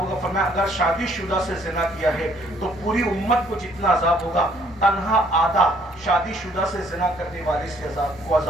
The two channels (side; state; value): both; normal; correlation 0.64